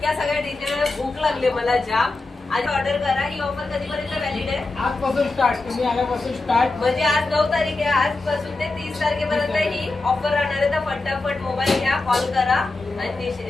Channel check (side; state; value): right; quieter; 3.3 dB